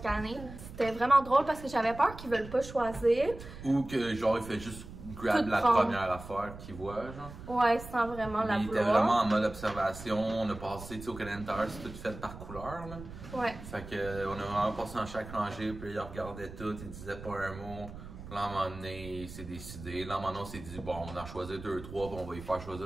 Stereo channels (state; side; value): noise; right; rumble, 13 dB below the sound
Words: année. C'était vraiment drôle parce que j'avais peur qu'ils veulent pas choisir. Ou que, genre, il fait juste grab la première affaire qu'il voit, genre. Ouais, sans vraiment la vouloir. Il était vraiment en mode observation. On a passé, tu sais, au Canadian Tire, c'est tout fait par couleur, là. Ouais. Fait que, on a vraiment passé dans chaque rangée, puis il regardait tout, il disait pas un mot. Là, à un moment donné, il s'est décidé. Là, à un moment donné, on s'est dit, bon, on en choisit 2-3, puis on va y faire